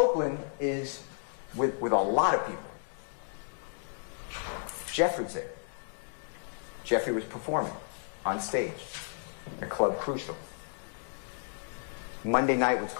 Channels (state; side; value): silent; right; digital silence